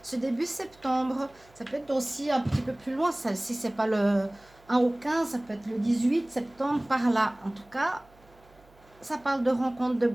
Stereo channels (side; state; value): right; noise; hum, 29 dB below the sound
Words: ce début septembre? Ça peut être aussi un petit peu plus loin, ça, si c'est pas le 1 au 15, ça peut être le 18 septembre, par là. En tout cas, ça parle de rencontre, de